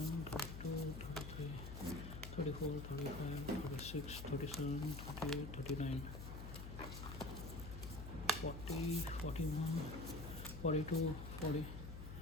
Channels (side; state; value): left; noise; hum, 8 dB below the sound